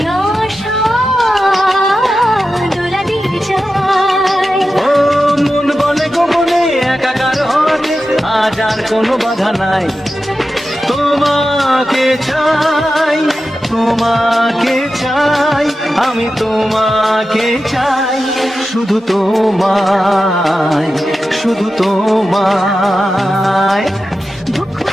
আশা দোলা দিয়ে যায়। ও মন বলে গোপনে একাকার হতে আজ আর কোনো বাধা নাই, তোমাকে চাই, তোমাকে চাই, আমি তোমাকে চাই, শুধু তোমায়, শুধু তোমায়। বুক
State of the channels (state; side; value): normal; both; correlation 0.92